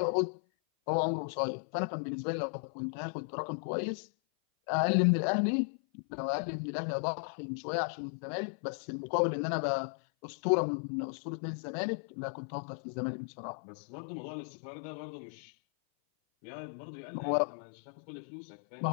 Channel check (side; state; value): right; silent; 54 dB below the other